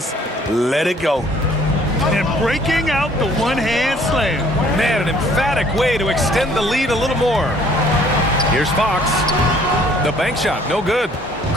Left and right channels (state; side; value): normal; both; correlation 0.58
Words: let it go. And breaking out the one-hand slam. Man, an emphatic way to extend the lead a little more. Here's Fox. The bank shot, no good.